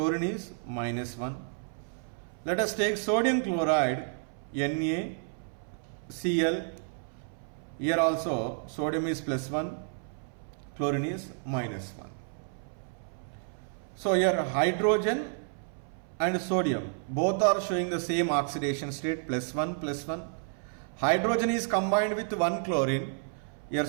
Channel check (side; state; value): left; silent; 57 dB below the other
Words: is -1. Let us take sodium chloride, NaCl. Here also sodium is +1, chlorine is -1. So here hydrogen and sodium both are showing the same oxidation state, +1. Hydrogen is combined with one chlorine. Here